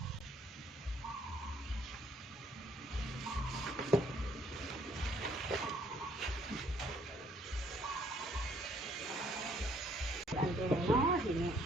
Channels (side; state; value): both; normal; correlation 0.64